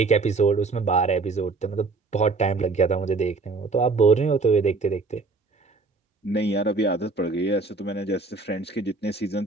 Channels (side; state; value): left; quieter; 3.9 dB